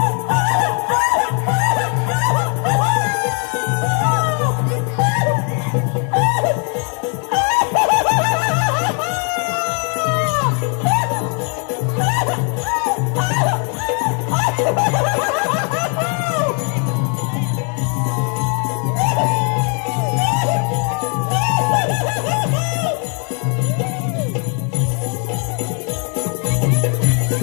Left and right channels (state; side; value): quieter; right; 38.1 dB